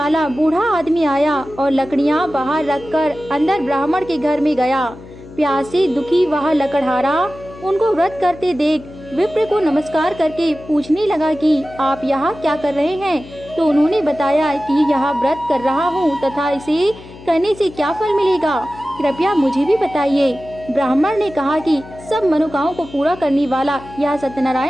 बूढ़ा आदमी आया और लकड़ियां बाहर रखकर अंदर ब्राह्मण के घर में गया। प्यास से दुखी वह लकड़हारा उनको व्रत करते देख विप्र को नमस्कार करके पूछने लगा कि आप यहाँ क्या कर रहे हैं? तो उन्होंने बताया कि यह व्रत कर रहा हूँ तथा इसे करने से क्या फल मिलेगा, कृपया मुझे भी बताइए। ब्राह्मण ने कहा कि सब मनोकामनाओं को पूरा करने वाला यह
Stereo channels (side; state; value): left; noise; hum, 18 dB below the sound